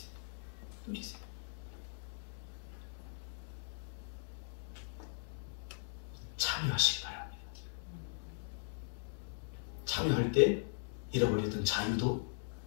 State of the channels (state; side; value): silent; right; digital silence